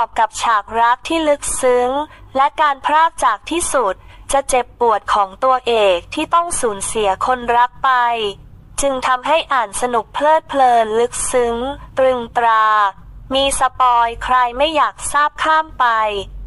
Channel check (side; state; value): both; identical; correlation 1.00